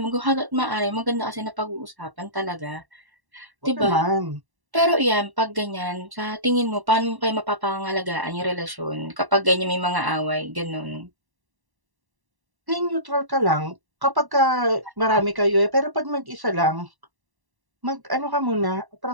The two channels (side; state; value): left; late; 1.1 ms